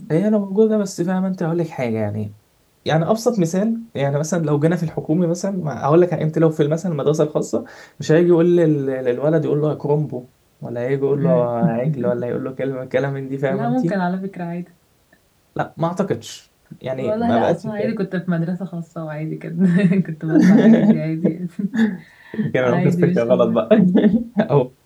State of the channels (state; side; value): identical; both; correlation 1.00